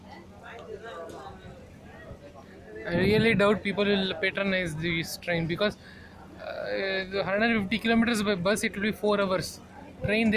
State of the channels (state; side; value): identical; both; correlation 1.00